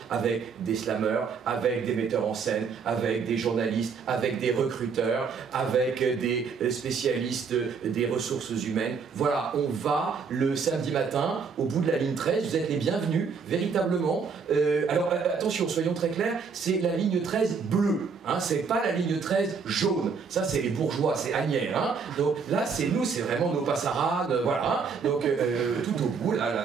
avec des slameurs, avec des metteurs en scène, avec des journalistes, avec des recruteurs, avec des spécialistes des ressources humaines. Voilà, on va le samedi matin, au bout de la ligne 13, vous êtes les bienvenus, véritablement. Alors attention, soyons très clairs, c'est la ligne 13 bleue, hein, c'est pas la ligne 13 jaune. Ça, c'est les bourgeois, c'est Agnières. Hein. Donc là, c'est nous, c'est vraiment nos passarades, voilà. Hein. Donc tout au bout,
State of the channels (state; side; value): quieter; left; 5.6 dB